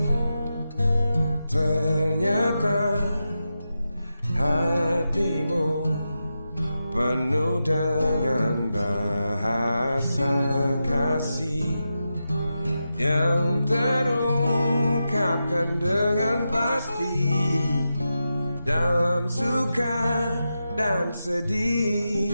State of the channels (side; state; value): both; inverted; correlation -0.90